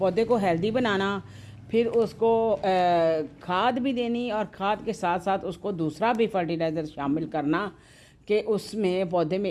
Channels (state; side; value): identical; both; correlation 1.00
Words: को हेल्दी बनाना, फिर उसको खाद भी देनी और खाद के साथ साथ उसको दूसरा भी फर्टिलाइज़र शामिल करना कि उसमें पौधे